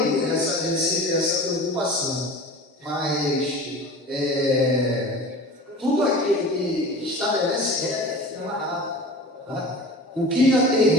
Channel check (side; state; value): both; normal; correlation 0.37